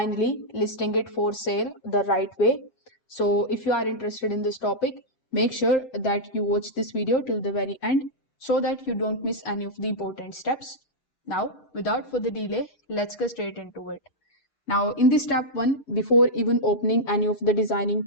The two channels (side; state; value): right; late; 7.3 ms